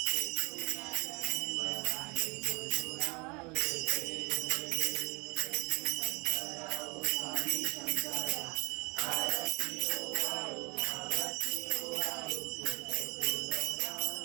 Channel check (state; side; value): quieter; left; 28.5 dB